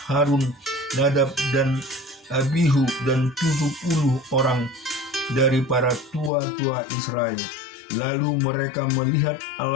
Harun, Nadab dan Abihu dan 70 orang dari para tua-tua Israel. Lalu mereka melihat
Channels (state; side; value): drops out; right; at 6.3 s